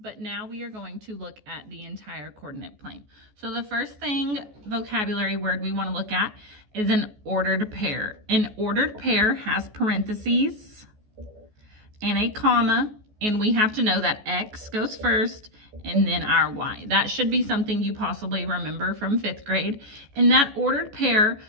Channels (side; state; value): left; late; 14 ms